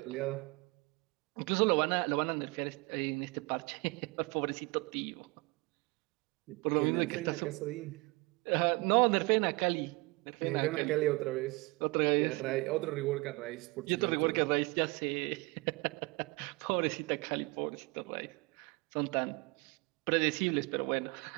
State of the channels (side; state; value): left; quieter; 26.2 dB